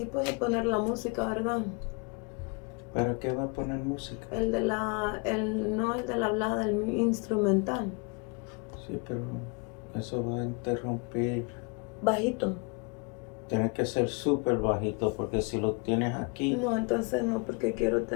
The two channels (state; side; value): quieter; right; 32.1 dB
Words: puedo poner la música, ¿verdad? ¿Pero qué va a poner música? No el de la hablada, el instrumental. Sí, pero eso va a interrumpir. Bajito. Tiene que ser súper bajito porque si lo tienes aquí. No, entonces no, porque quiero